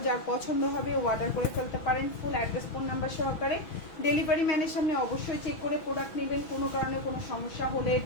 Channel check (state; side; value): late; right; 6.0 ms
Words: যার পছন্দ হবে অর্ডার করে ফেলতে পারেন, ফুল অ্যাড্রেস ফোন নাম্বার সহকারে। ডেলিভারি ম্যানের সামনে অবশ্যই চেক করে প্রোডাক্ট নেবেন। কোনো কারণে কোনো সমস্যা হলে,